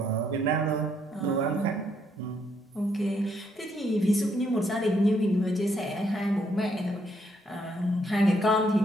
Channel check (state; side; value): normal; both; correlation 0.73